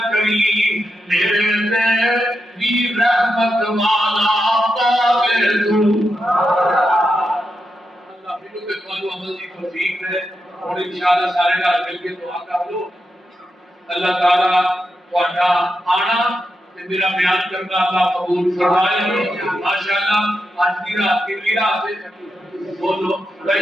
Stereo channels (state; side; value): normal; both; correlation 0.86